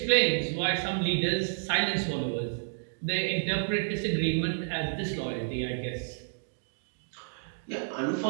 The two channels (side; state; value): left; silent; digital silence